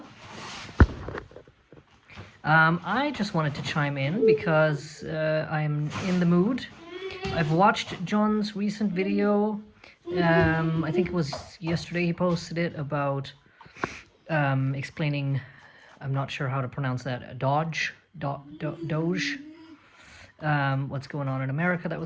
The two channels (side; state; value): both; identical; correlation 1.00